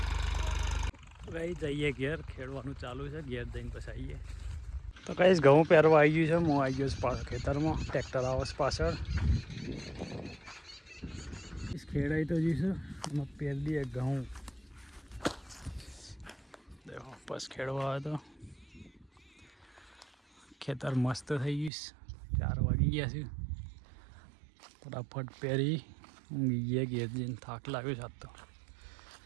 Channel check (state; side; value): drops out; left; at 21.7 s